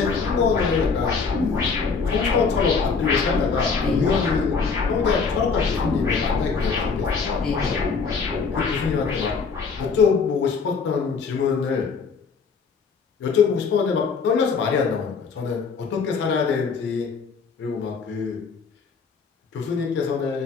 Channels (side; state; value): right; quieter; 5.2 dB